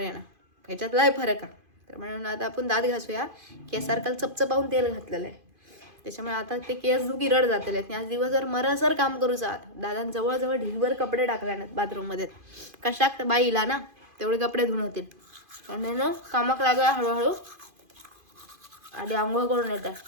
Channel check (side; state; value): left; late; 2.5 ms